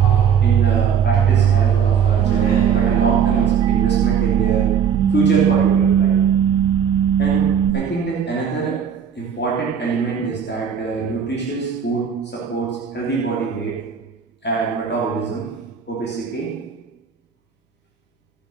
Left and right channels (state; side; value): quieter; left; 7.6 dB